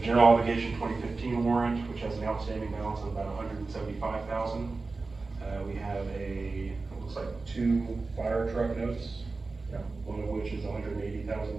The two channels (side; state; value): left; quieter; 3.8 dB